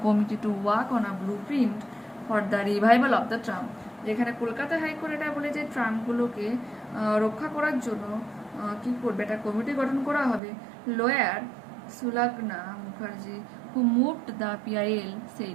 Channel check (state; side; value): drops out; left; at 10.4 s